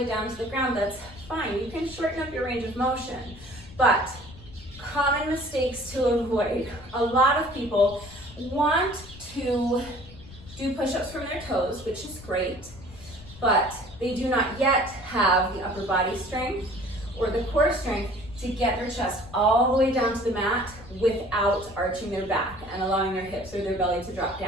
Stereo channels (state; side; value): noise; left; rumble, 18 dB below the sound